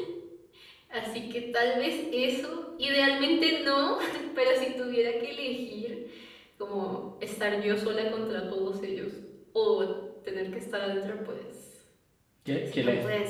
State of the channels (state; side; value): identical; both; correlation 1.00